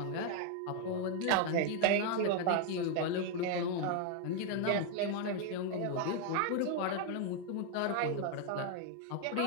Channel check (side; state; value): both; different; correlation 0.00